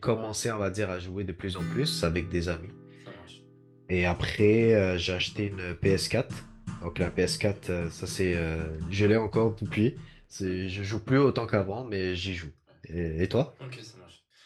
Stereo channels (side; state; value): both; identical; correlation 1.00